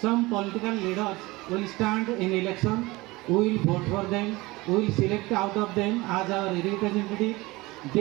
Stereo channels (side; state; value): left; quieter; 21.5 dB